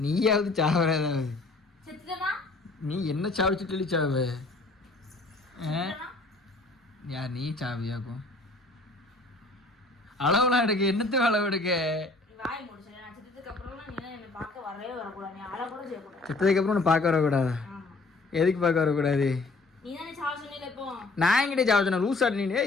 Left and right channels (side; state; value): right; quieter; 3.3 dB